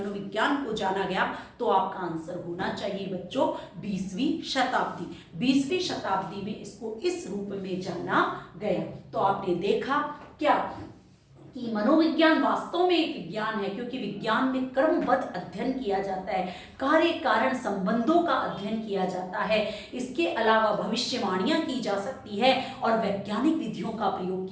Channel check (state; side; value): identical; both; correlation 1.00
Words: को जाना गया, तो आपका आंसर होना चाहिए बच्चों 20वीं शताब्दी। 20वीं शताब्दी में इसको इस रूप में जाना गया। तो आपने देखा क्या कि मनोविज्ञान वास्तव में एक विज्ञान है, क्योंकि विज्ञान में क्रमबद्ध अध्ययन किया जाता है, कार्य कारण संबंधों का अध्ययन किया जाता है। इसके अलावा भविष्यवाणियां की जा सकती है और वैज्ञानिक विधियों का प्रयोग